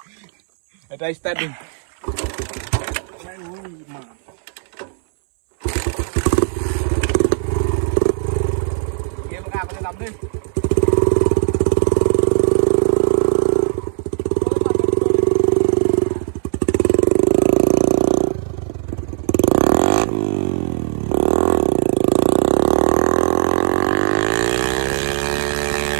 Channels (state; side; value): silent; left; 65 dB below the other